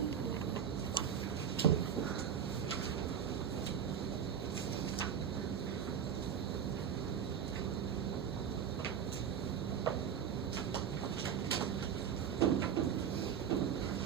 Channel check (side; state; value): left; quieter; 8.0 dB